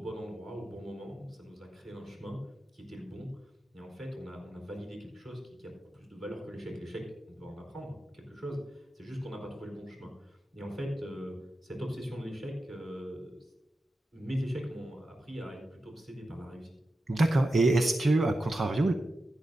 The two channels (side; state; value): both; normal; correlation 0.91